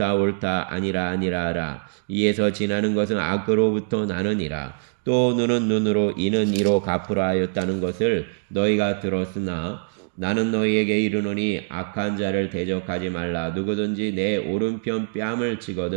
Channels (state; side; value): silent; left; digital silence